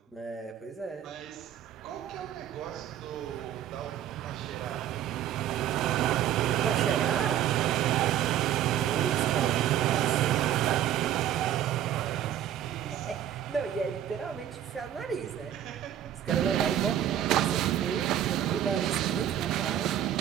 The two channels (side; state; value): left; quieter; 10.9 dB